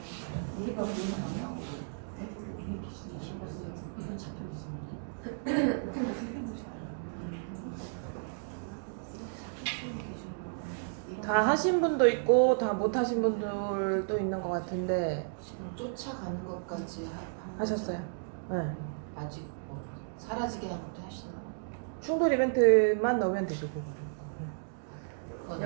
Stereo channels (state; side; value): silent; left; digital silence